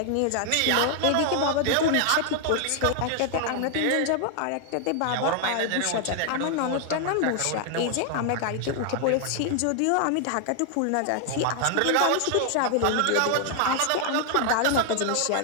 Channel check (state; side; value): different; both; correlation 0.00